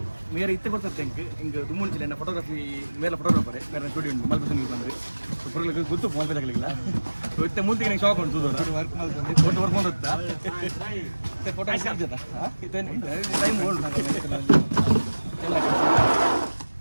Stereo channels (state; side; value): inverted; both; correlation -1.00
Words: ಮೇರೆ ಇತ್ತೆ ಬರ್ತದೆ ಹಿಂಗೆ ದುಮ್ಮುಂಚಿಲ್ಲ ನನ್ನ ಫೋಟೋಗ್ರಫಿ ಮೇಲೆ ಫೋಟೋಗ್ರಾಫರೇ ಬೇರೆ ಸ್ಟುಡಿಯೋ ಉಂಟು ಮಲ್ಪಸಂಗಿಗೆ ಬಂದರೆ ಪುರಗಳಿಗೆ ಗೊತ್ತು ಫೋನ್ ಪೇ ತಗಲಿಲ್ಲ ಇತ್ತೆ ಮುಂದೆ ನಂಗೆ ಶಾಕ್ ಉಂಟು ವರ್ಕ್ ಮಾಡ್ತಾ ಫೋಟೋ ಟೈಮ್ ಓಲ್ಡ್